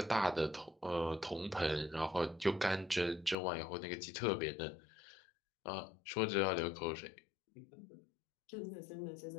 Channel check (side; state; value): right; drops out; at 3.4 s